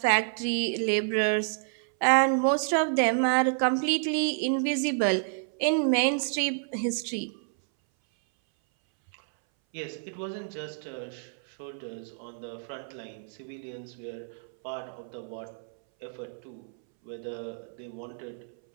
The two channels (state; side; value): silent; left; 58 dB below the other